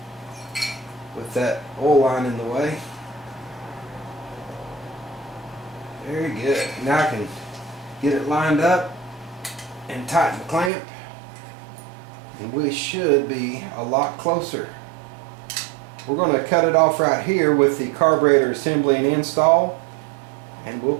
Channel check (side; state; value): left; drops out; at 10.7 s